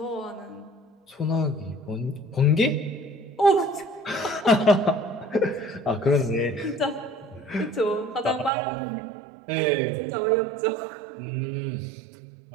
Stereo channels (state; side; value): drops out; left; at 8.5 s